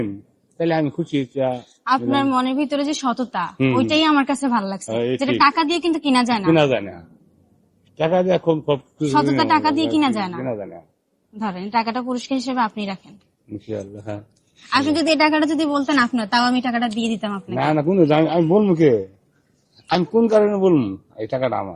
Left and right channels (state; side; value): identical; both; correlation 1.00